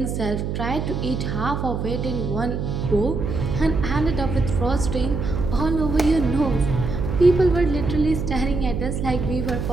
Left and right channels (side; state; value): right; noise; hum, 3 dB below the sound